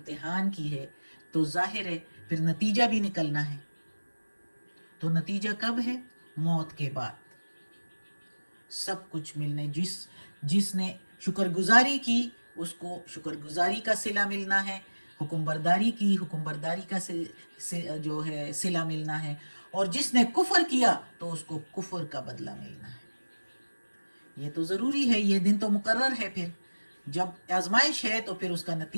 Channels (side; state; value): both; inverted; correlation -1.00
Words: کی ہے، تو ظاہر ہے پھر نتیجہ بھی نکلنا ہے۔ تو نتیجہ کب ہے؟ موت کے بعد سب کچھ ملنے، جس نے شکر گزاری کی اس کو شکر گزاری کا صلہ ملنا ہے، حکم برداری کی حکم برداری کا جو ہے صلہ ملنا ہے، اور جس نے کفر کیا تو اس کو کفر کا بدلہ ملنا ہے۔ یہ تو ضروری ہے، یہ دن تو مقرر ہے۔ پھر جب آزمائش ہے تو پھر اس کا